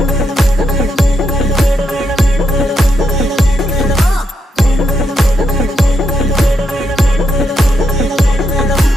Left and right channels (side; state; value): both; normal; correlation 0.81